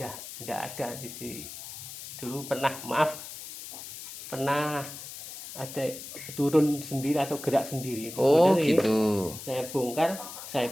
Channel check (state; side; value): noise; left; hiss, 11 dB below the sound